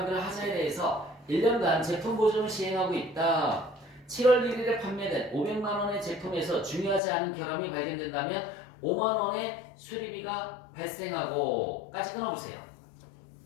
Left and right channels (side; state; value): right; drops out; at 7.0 s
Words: 하자에 대해서 1년간 제품 보증을 시행하고 있다. 7월 1일에 판매된 500만 원의 제품에서 중요하지 않은 결함이 발견된다면 5만 원의 수리비가 발생하고 까지 끊어보세요.